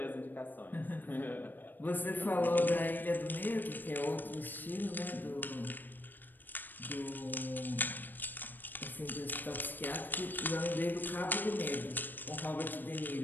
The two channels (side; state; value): right; late; 0.090 ms